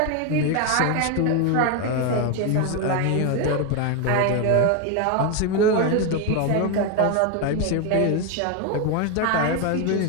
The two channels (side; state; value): both; different; correlation 0.01